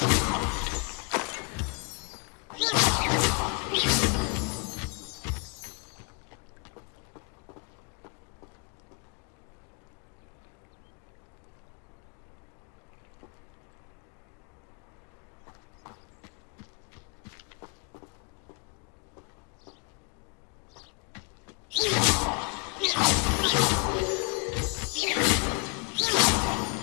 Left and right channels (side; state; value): right; quieter; 33.3 dB